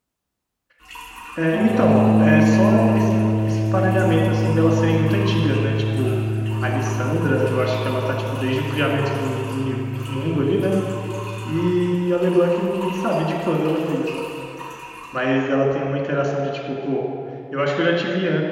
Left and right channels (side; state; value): both; identical; correlation 1.00